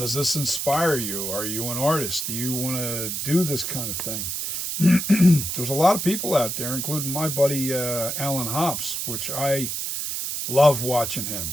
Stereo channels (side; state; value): right; noise; hiss, 3 dB below the sound